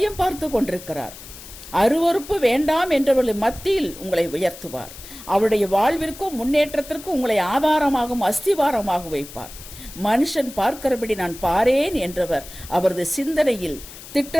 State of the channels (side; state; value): left; noise; hiss, 16 dB below the sound